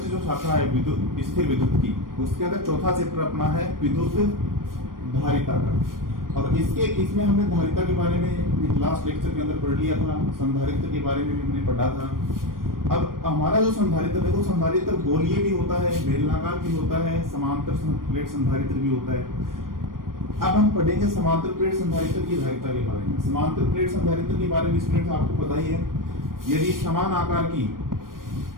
जो शाखा है विद्युत स्थिर विद्युत की, उसके अंदर चौथा चैप्टर अपना है विद्युत धारिता का। और इसमें हमने धारिता के बारे में लास्ट लेक्चर के अंदर पढ़ लिया था, संधारित्र के बारे में भी हमने पढ़ा था। अब हमारा जो संधारित्र है वो संधारित्र गोलीय भी होता है, बेलनाकार भी होता है, समांतर प्लेट संधारित्र भी होता है। अब हम पढ़ेंगे समांतर प्लेट संधारित्र की धारिता के बारे में। समांतर प्लेट संधारित्र के बारे में स्टूडेंट आपको पता ही है, यदि समान आकार की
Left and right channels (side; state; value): left; late; 0.91 ms